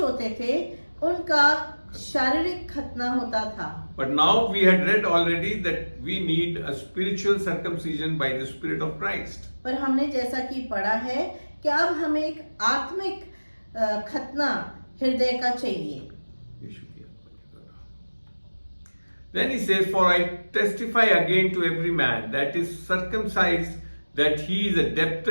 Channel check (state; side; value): inverted; both; correlation -1.00